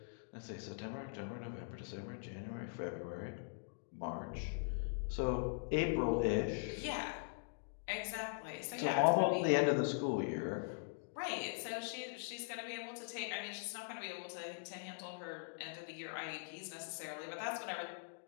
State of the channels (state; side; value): silent; right; digital silence